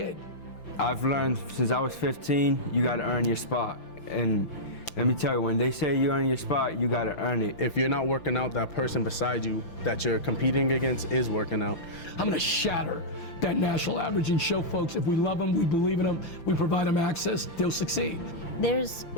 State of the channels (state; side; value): late; right; 5.9 ms